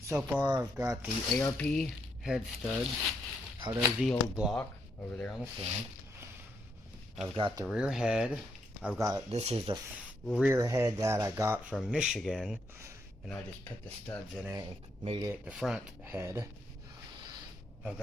far I've got the ARP head studs out of the old block over there on the stand. I've got the rear head. This is the rear head that I got from Michigan, and I just put the studs in it and made it the front head. I've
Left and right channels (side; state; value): both; normal; correlation 0.77